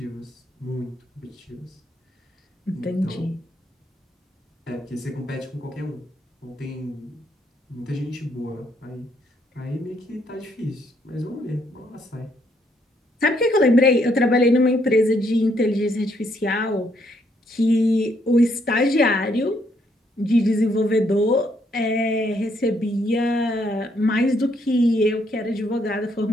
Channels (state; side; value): normal; both; correlation 0.72